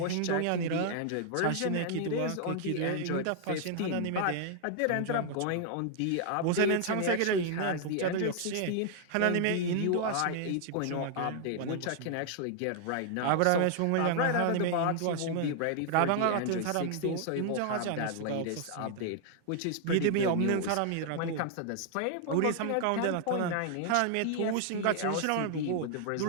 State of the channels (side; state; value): both; different; correlation 0.00